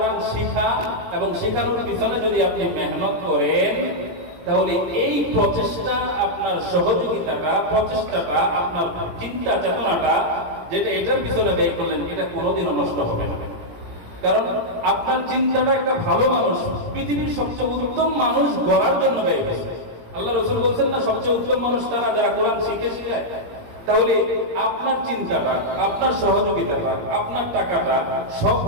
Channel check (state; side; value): late; left; 18 ms